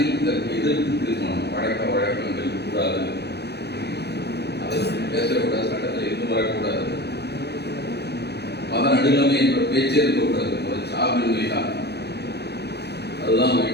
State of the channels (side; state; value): right; late; 0.48 ms